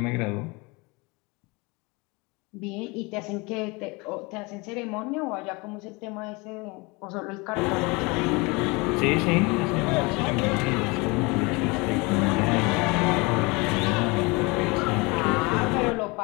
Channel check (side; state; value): right; quieter; 26.6 dB